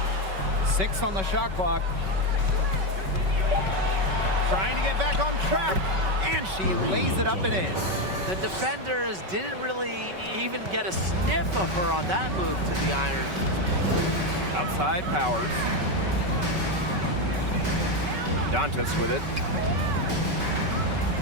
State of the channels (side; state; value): left; late; 5.3 ms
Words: 6 on the shot clock. Trying to get back on track, and she lays it up and in. The defenders didn't really even get a sniff of her on that move to the iron. Outside Powers. Dantas with it.